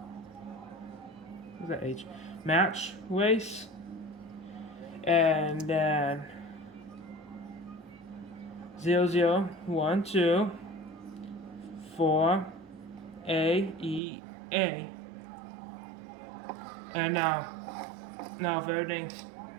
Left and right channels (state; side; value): drops out; left; at 14.0 s